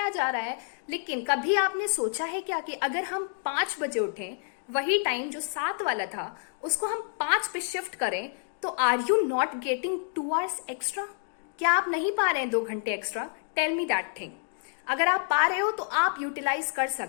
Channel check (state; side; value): silent; right; digital silence